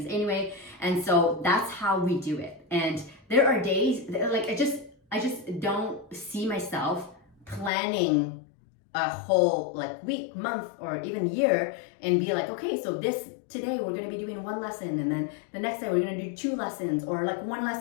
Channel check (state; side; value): drops out; right; at 7.7 s